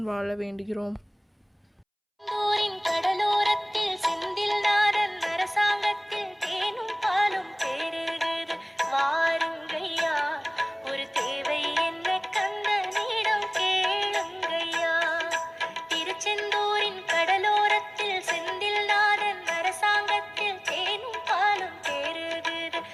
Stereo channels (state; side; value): identical; both; correlation 1.00